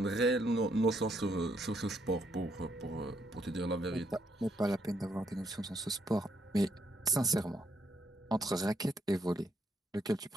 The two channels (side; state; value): both; normal; correlation 0.74